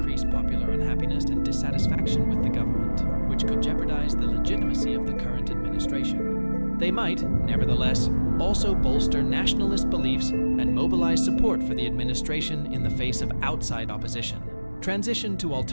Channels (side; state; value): both; inverted; correlation -1.00